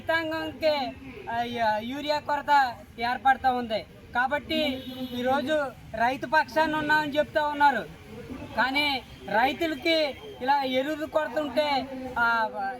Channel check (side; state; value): both; identical; correlation 1.00